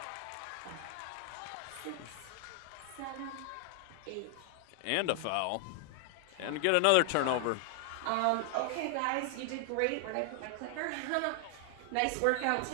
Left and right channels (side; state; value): both; different; correlation 0.00